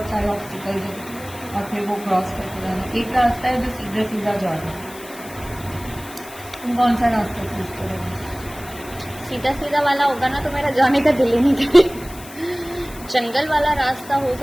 ऑब्स्टिकल्स हैं, और फिर वो क्रॉस करके जाना। एक रास्ता है जो सीधा सीधा जा रहा है। तुम कौन सा रास्ता चूज करोगे? सीधा सीधा वाला होगा ना तो मेरा जाने का दिल ही नहीं करेगा। जंगल वाला रास्ता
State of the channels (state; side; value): noise; left; hiss, 17 dB below the sound